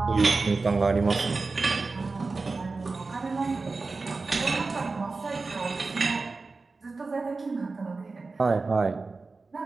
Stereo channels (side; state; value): left; quieter; 3.9 dB